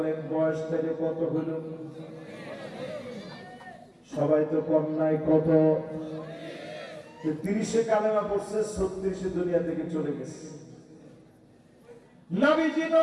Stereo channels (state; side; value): identical; both; correlation 1.00